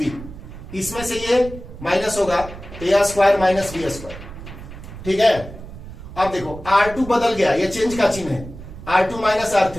इसमें से ये माइनस होगा A² - B², ठीक है? अब देखो R2 बदल गया, ये चेंज का चिन्ह है, R2 -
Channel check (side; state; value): right; noise; rumble, 13 dB below the sound